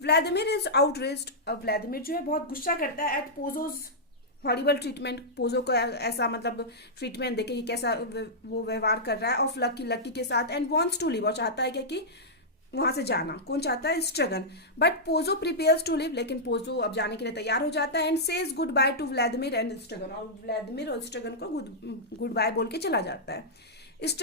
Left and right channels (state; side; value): normal; both; correlation -0.10